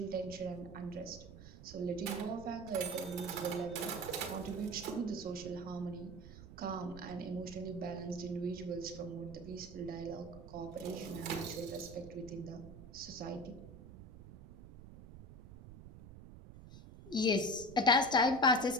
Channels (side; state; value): right; noise; rumble, 15 dB below the sound